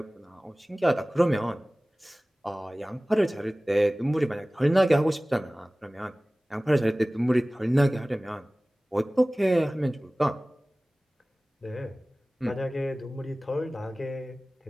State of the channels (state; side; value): normal; both; correlation 0.98